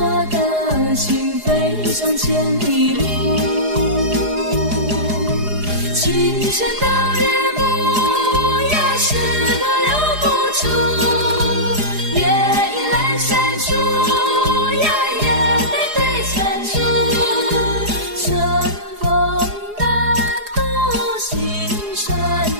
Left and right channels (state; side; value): late; left; 4.8 ms